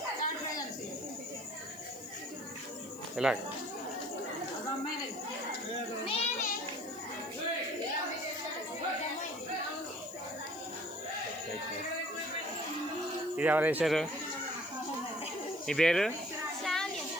ఇలా ఇది ఎవరు వేశారు? మీ పేరు?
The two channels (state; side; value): noise; left; hiss, 19 dB below the sound